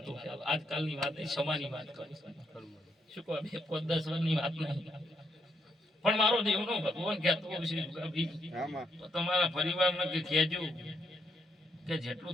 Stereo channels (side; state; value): both; normal; correlation 0.76